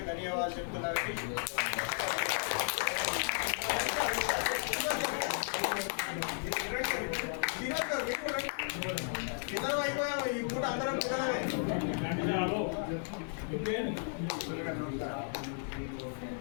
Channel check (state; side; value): silent; right; 55 dB below the other